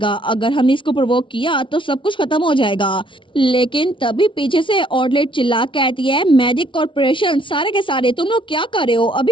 अगर हमने इसको प्रोवोक किया तो सब कुछ खत्म हो जाएगा। लेकिन तभी पीछे से ऑर्डलेट चिल्ला कहती है मैजिक कॉर्पोरेशन सारे के सारे तुम लोग क्या कर रहे हो,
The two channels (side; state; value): right; late; 0.25 ms